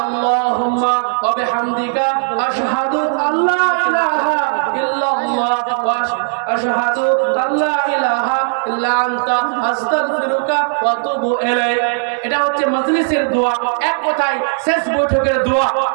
আল্লাহুম্মা ওয়া বিহামদিকা আশহাদু আল্লা ইলাহা ইল্লাল্লাহ ওয়া আশহাদু আল্লা ইলাহা ইল্লা আনতা আস্তাগফিরুকা ওয়া আতুবু ইলাইক। এটা হচ্ছে মজলিসের দোয়া, এক কথায় শেষ বৈঠকের দোয়া।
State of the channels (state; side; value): silent; left; digital silence